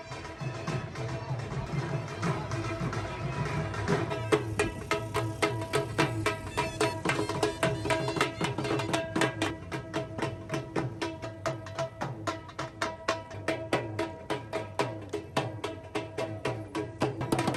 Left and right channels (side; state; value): both; identical; correlation 1.00